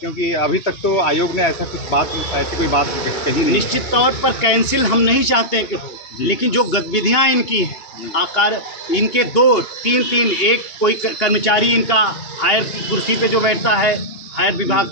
अभी तक तो आयोग ने ऐसी कोई बात कही नहीं। निश्चित तौर पर कैंसिल हम नहीं चाहते हैं कि हो, लेकिन जो गतिविधियाँ इनकी हैं, आकार इनके 2-3 एक कोई कर्मचारी इनका हायर कुर्सी पे जो बैठता है, हायर विभाग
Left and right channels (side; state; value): right; late; 2.8 ms